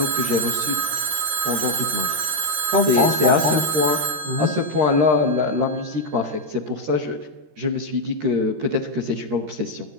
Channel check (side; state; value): left; late; 13 ms